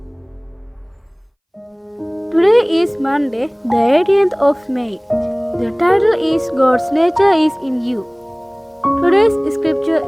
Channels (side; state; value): both; identical; correlation 1.00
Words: Today is Monday, the 18th of May. The title is God's Nature is in You. Today's scripture